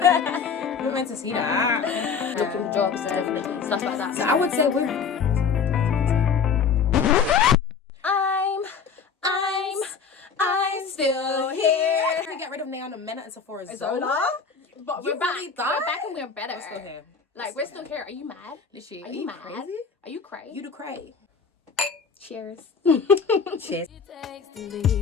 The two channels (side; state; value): right; quieter; 5.9 dB